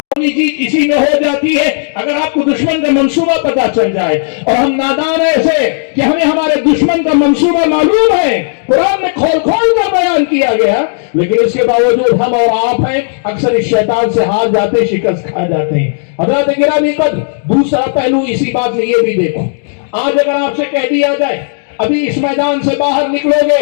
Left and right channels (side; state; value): right; silent; digital silence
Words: جیت اسی میں ہو جاتی ہے اگر آپ کو دشمن کا منصوبہ پتا چل جائے۔ اور ہم نادان ایسے کہ ہمیں ہمارے دشمن کا منصوبہ معلوم ہے، قرآن میں کھول کھول کر بیان کیا گیا، لیکن اس کے باوجود ہم اور آپ ہیں اکثر اس شیطان سے ہار جاتے، شکست کھا جاتے ہیں۔ حضرات گرامی قدر، دوسرا پہلو اسی بات میں یہ بھی دیکھو، آج اگر آپ سے کہہ دیا جائے ابھی اس میدان سے باہر نکلو